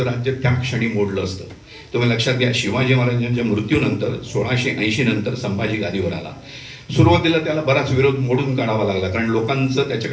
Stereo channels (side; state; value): both; identical; correlation 1.00